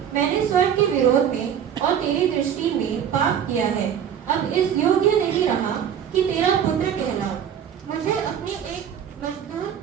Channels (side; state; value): left; quieter; 8.8 dB